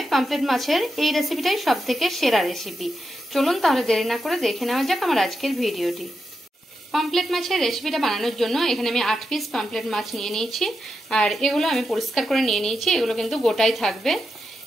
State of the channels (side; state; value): both; normal; correlation 0.87